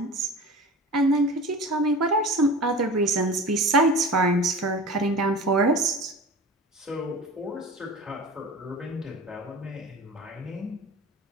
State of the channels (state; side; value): normal; both; correlation 0.35